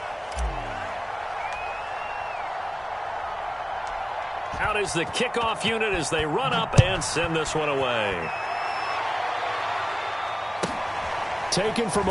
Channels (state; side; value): identical; both; correlation 1.00